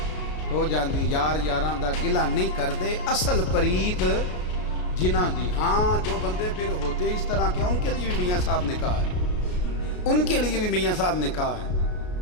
ہو جاندی. یار یاراں دا گلا نہیں کردے اصل پریت جنہ دی. ہاں جو بندے پھر ہوتے اس طرح کے ان کے لیے بھی میاں صاحب نے کہا ہے, ان کے لیے بھی میاں صاحب نے کہا ہے,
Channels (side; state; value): right; late; 33 ms